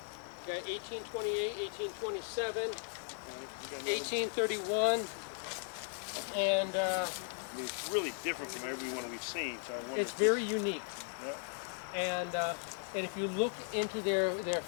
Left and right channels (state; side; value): silent; right; 53 dB below the other